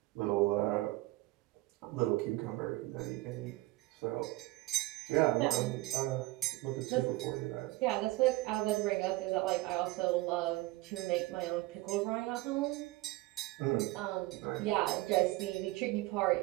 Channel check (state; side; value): quieter; left; 19.7 dB